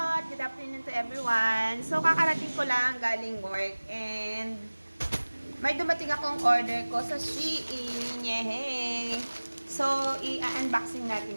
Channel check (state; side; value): inverted; both; correlation -1.00